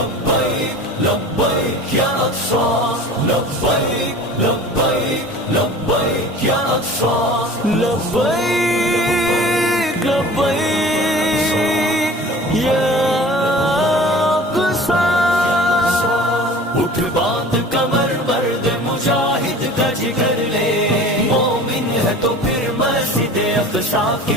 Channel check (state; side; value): normal; both; correlation 0.42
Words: لبيك يا أقصى لبيك لبيك لبيك يا أقصى لبيك لبيك يا أقصى اٹھ باندھ کمر مرد مجاہد کا جگر لے مومن ہے تو پھر مسجد اقصی کی